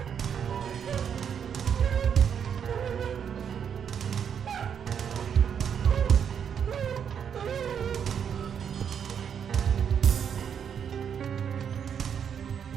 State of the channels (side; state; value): left; quieter; 7.9 dB